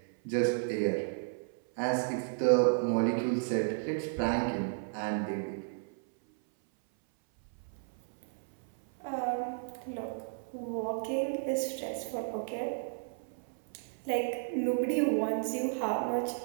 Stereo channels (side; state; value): left; silent; 56 dB below the other